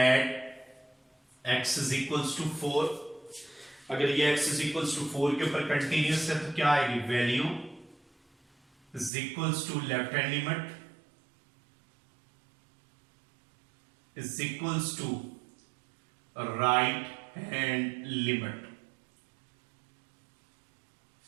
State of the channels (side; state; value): left; drops out; at 9.1 s